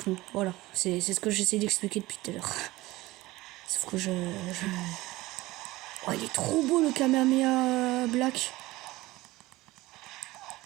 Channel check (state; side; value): quieter; left; 19.0 dB